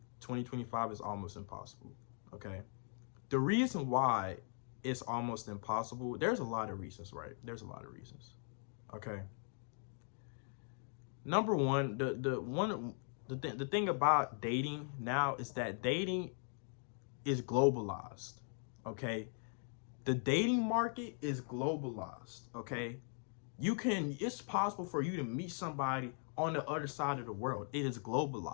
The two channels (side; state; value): right; silent; 51 dB below the other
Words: 2025 is almost impossible. Okay, the reason why it's almost impossible, there's a lot of reasons, right? There's a lot of reasons. Okay, number one, the thing about dating now is that dating is globalized. Okay, the dating market is globalized. Okay, it's possible for you to meet somebody on the other side of the world. It is